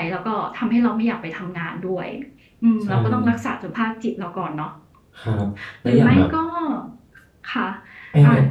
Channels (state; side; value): identical; both; correlation 1.00